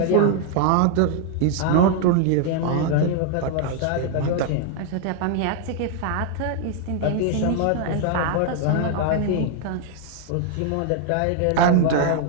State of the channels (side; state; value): both; different; correlation 0.00